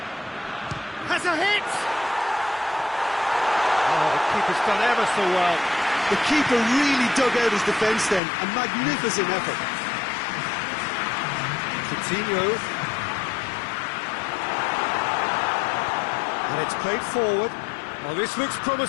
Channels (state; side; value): drops out; right; at 8.2 s